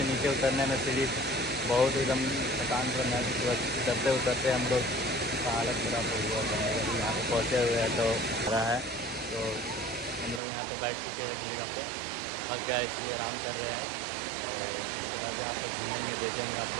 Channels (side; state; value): left; drops out; at 10.4 s